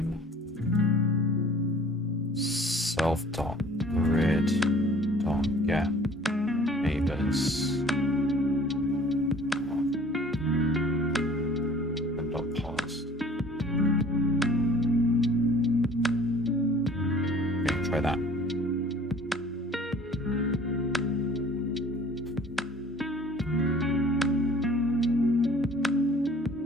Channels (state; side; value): normal; both; correlation 0.50